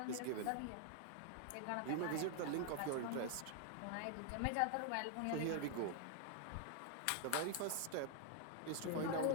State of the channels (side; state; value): both; different; correlation 0.00